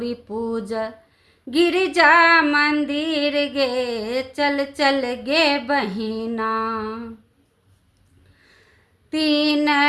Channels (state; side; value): identical; both; correlation 1.00